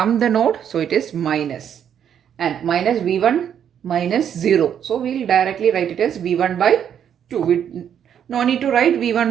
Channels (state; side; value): quieter; left; 8.9 dB